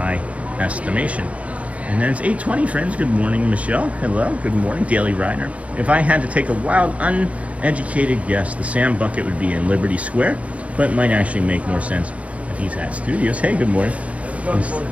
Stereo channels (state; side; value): late; left; 0.065 ms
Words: estimation. And then it's 8:20, friends. Good morning, Michelle. Hello. Good morning, Daily Rider. If I had to take a wild, uneducated guess, the Sam Bucket would be in Liberty Square, but it might actually make more sense if he's at Studios. Hey, good morning.